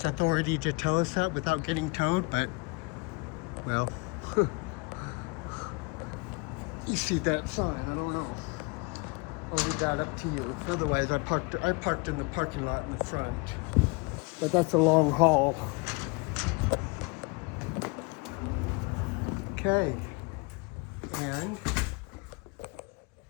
authority to tell us that without getting towed, but, well, you see that sign, I don't know. I'll leave that up to you. Otherwise, I parked in the parking lot in the front. But that's a long haul. Okay. And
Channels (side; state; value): right; quieter; 29.2 dB